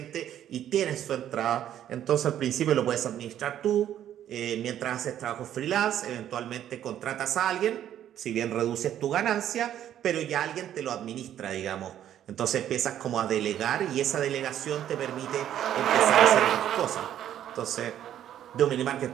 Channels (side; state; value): left; quieter; 11.0 dB